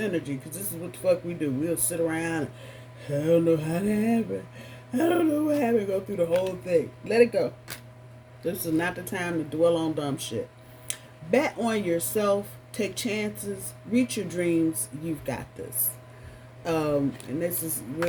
because this is what the fuck we do. We'll sit around, I don't know how that happened. I don't know what happened. Go through the whole thing. Let it go. This is not the time to dwell on dumb shit. Bet on yourself. Take chances. Reach your dreams. You've got this. And this is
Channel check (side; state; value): both; identical; correlation 1.00